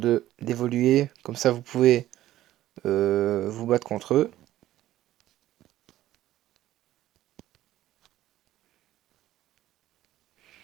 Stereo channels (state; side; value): quieter; left; 14.0 dB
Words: d'évoluer. Comme ça vous pouvez vous battre contre eux.